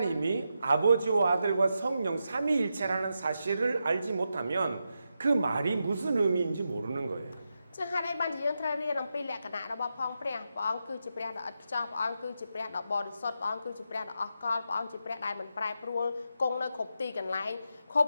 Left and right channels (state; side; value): inverted; both; correlation -0.86